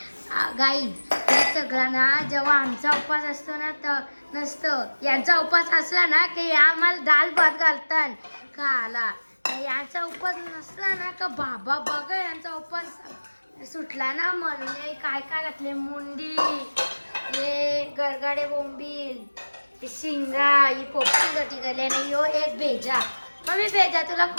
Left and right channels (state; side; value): inverted; both; correlation -1.00